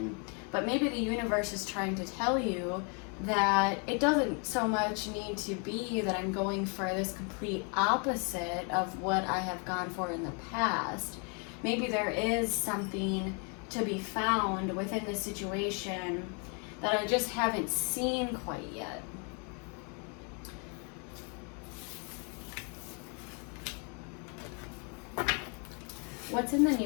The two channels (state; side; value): quieter; right; 36.9 dB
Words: But maybe the universe is trying to tell you that it doesn't so much need to be that I'm going for this complete opposite of what I have gone for in the past. Maybe there is something to be found within the situation that I just haven't seen quite yet. What's in the